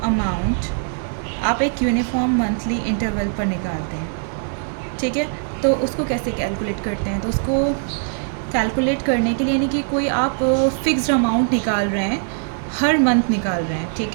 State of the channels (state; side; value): silent; left; digital silence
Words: अमाउंट आप एक यूनिफॉर्म मंथली इंटरवल पर निकालते हैं, ठीक है। तो उसको कैसे कैलकुलेट करते हैं? तो उसको कैलकुलेट करने के लिए यानी कि कोई आप फिक्स्ड अमाउंट निकाल रहे हैं, हर मंथ निकाल रहे हैं,